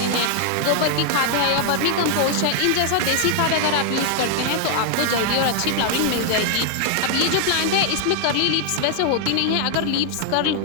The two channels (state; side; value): different; both; correlation 0.00